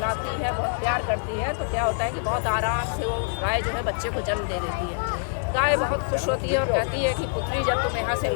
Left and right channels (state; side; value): silent; right; digital silence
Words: है, बहुत प्यार करती है। तो क्या होता है कि बहुत आराम से वो गाय जो है बच्चे को जन्म दे देती है। गाय बहुत खुश होती है और कहती है कि पुत्री जब तुम यहाँ से